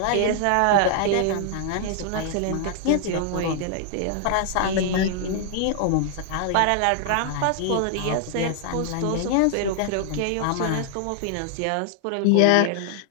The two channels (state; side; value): different; both; correlation 0.00